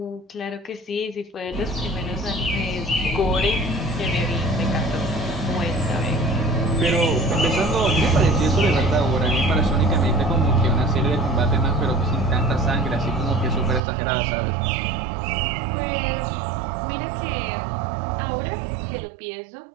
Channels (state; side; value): drops out; left; at 13.8 s